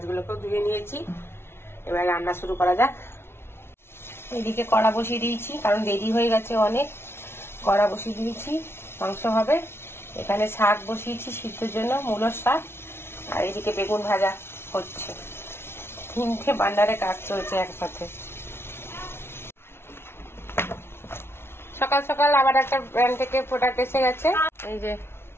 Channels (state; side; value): late; right; 0.12 ms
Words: ধুয়ে নিয়েছি। এবার রান্না শুরু করা যাক। এদিকে কড়া বসিয়ে দিয়েছি, কারণ দেরি হয়ে গেছে অনেক। কড়া বসিয়ে দিয়েছি, মাংস হবে। এখানে শাক বসিয়েছি সিদ্ধর জন্য, মূলোর শাক। আর এদিকে বেগুন ভাজা হচ্ছে। 3টে বান্ডারে কাজ চলছে একসাথে। সকাল সকাল আবার একটা ব্র্যান্ড থেকে প্রোডাক্ট এসে গেছে। এই যে